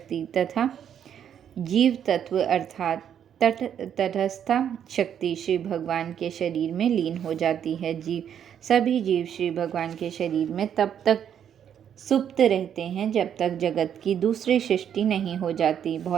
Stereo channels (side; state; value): left; quieter; 9.0 dB